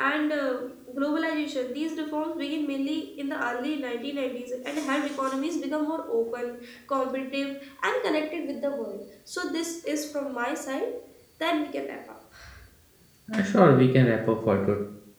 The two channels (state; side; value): identical; both; correlation 1.00